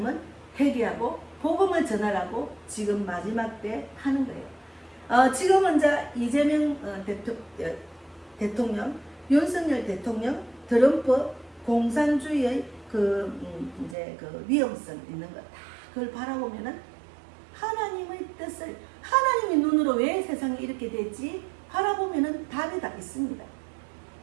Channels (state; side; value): drops out; left; at 14.0 s